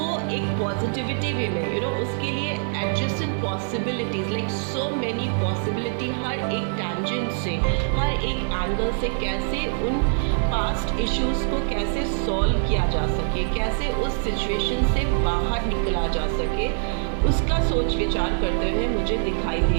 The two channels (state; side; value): silent; left; 62 dB below the other